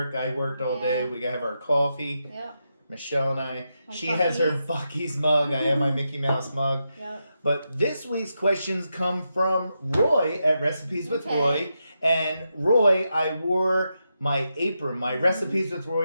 I worked all day. We got to have our coffee. Yep. Michelle and I. She Buc-ee's. has her Buc-ee's mug. I have my Mickey Mouse mug. Yep. But this week's questions come from Roy at Recipes with Roy. And Roy, I wore my apron, my Recipes with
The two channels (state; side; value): inverted; both; correlation -0.86